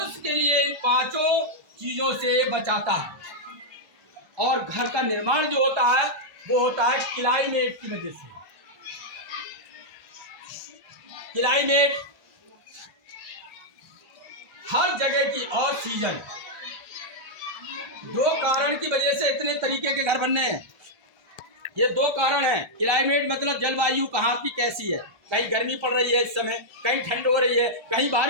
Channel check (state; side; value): late; left; 1.3 ms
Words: के लिए इन 5 चीजों से बचाता है। और घर का निर्माण जो होता है वो होता है क्लाइमेट की वजह से। क्लाइमेट हर जगह की और सीजन, 2 कारण की वजह से इतने तरीके के घर बनने हैं। ये 2 कारण हैं। क्लाइमेट मतलब जलवायु कहाँ की कैसी है। कहीं गर्मी पड़ रही है इस समय, कहीं ठंड हो रही है, कहीं